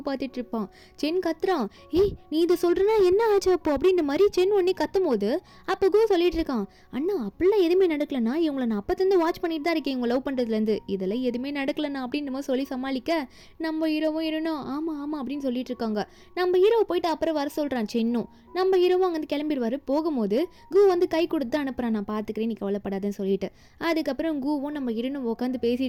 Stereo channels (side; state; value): both; identical; correlation 1.00